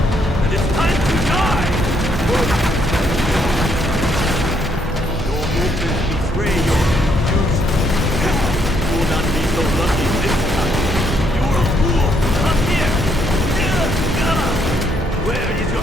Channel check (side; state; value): both; normal; correlation 0.72